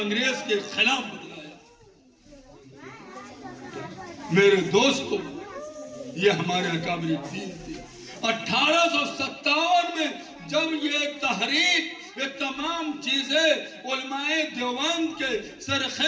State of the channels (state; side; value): identical; both; correlation 1.00